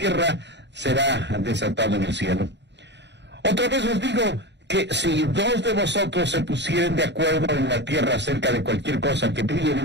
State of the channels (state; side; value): late; left; 0.51 ms